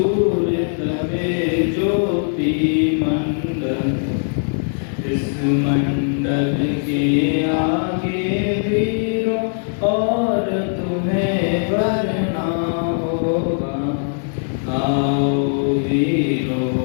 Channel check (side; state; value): right; silent; 66 dB below the other